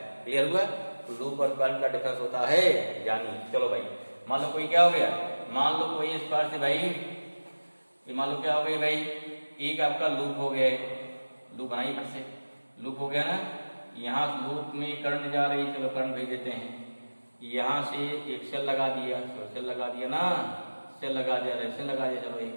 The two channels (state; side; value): inverted; both; correlation -1.00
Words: Clear हुआ, लूप और क्वाइल का डिफरेंस होता है, जानिए। चलो भाई, मान लो कोई क्या हो गया, मान लो कोई इस पार से भाई, ये मान लो क्या हो गई भाई, एक आपका लूप हो गया, लूप बनाइए फिर से, लूप हो गया ना, यहाँ लूप में करंट जा रही है, चलो करंट भेज देते हैं, यहाँ से एक सेल लगा दिया, तो सेल लगा दिया ना, सेल लगा दिया, रेजिस्टेंस लगा दिया, चलो